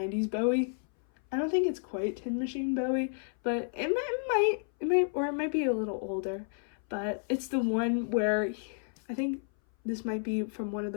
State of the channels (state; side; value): silent; right; 57 dB below the other